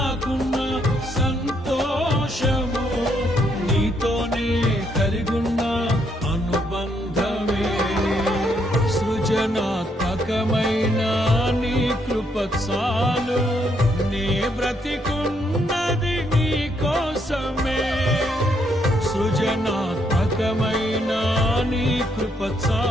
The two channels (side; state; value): both; normal; correlation 0.74